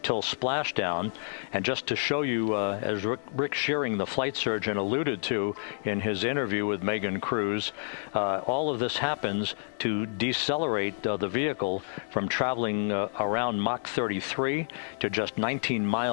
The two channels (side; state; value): right; silent; 59 dB below the other